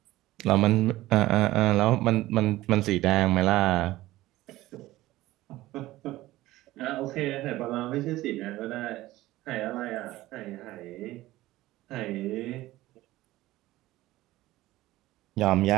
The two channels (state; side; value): quieter; left; 16.9 dB